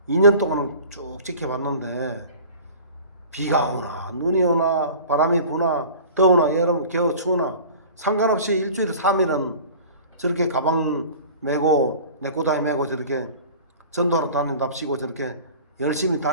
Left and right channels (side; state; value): both; inverted; correlation -0.42